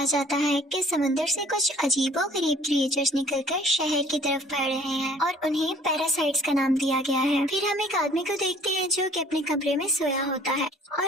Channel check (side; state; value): both; normal; correlation 0.54